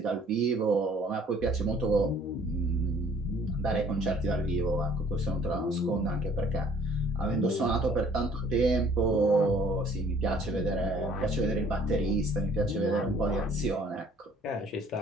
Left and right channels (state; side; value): normal; both; correlation 0.56